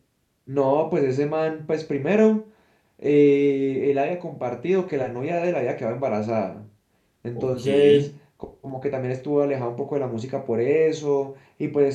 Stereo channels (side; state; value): both; identical; correlation 1.00